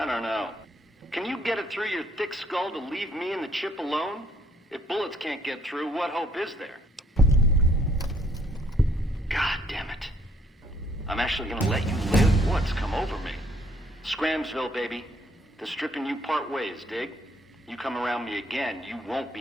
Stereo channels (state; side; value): normal; both; correlation 0.66